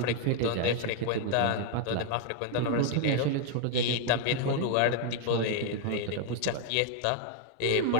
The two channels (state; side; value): different; both; correlation 0.00